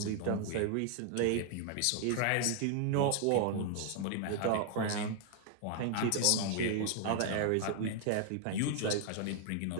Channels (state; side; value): different; both; correlation 0.00